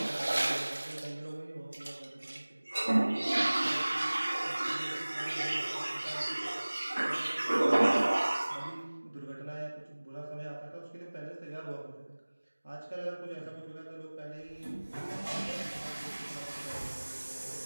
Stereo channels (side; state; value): both; inverted; correlation -1.00